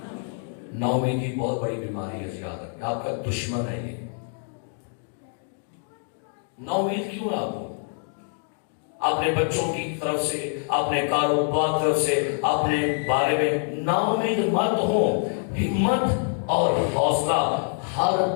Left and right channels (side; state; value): right; silent; 61 dB below the other